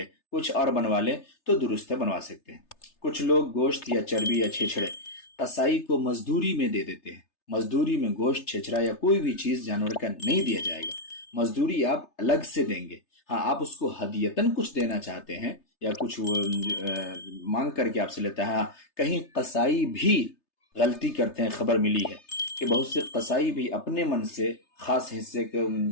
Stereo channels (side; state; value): right; late; 3.3 ms